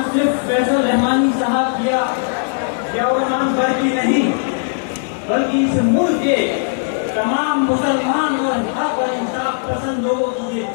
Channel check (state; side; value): silent; right; digital silence